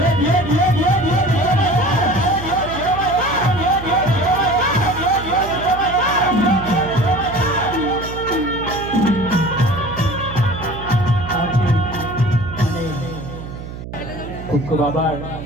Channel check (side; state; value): right; noise; hum, 11 dB below the sound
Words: ખૂબ ખૂબ આભાર.